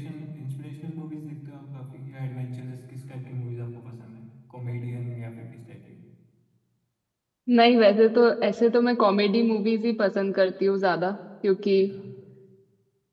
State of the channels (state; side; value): identical; both; correlation 1.00